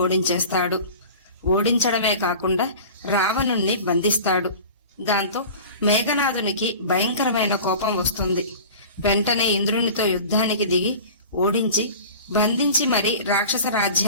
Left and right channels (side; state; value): both; inverted; correlation -0.38